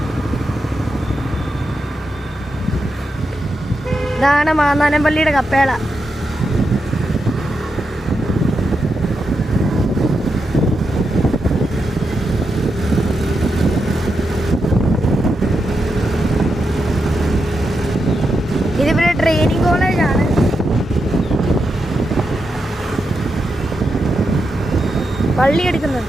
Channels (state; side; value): normal; both; correlation 0.86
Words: ഇതാണ് മാന്നാനംപള്ളിയുടെ കപ്പേള. ഇതിവിടെ ട്രെയിനിങ് കോളേജാണ്. പള്ളി എടുക്കുന്നത്